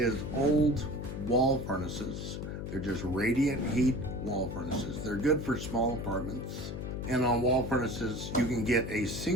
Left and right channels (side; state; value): left; noise; hum, 6 dB below the sound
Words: old wall furnaces. They're just radiant heat wall furnaces. They're good for small apartments. And on wall furnaces, you can get a